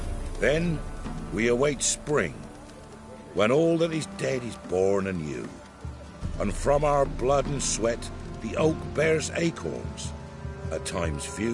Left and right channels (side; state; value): both; identical; correlation 1.00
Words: Then we await spring, when all that is dead is born anew. And from our blood and sweat the oak bears acorns, at times